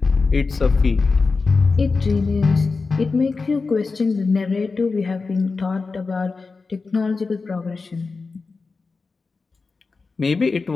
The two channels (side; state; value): right; quieter; 4.2 dB